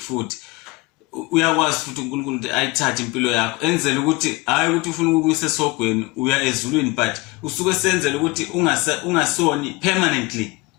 uyakwazi futhi uNkulunkulu ukuthi ayithathe impilo yakho enzele ukuthi hayi ukuthi ufuna ukuyisa esogweni uya ezulwini but usuke senzele ukuthi ungasoni permanently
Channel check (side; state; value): right; quieter; 23.0 dB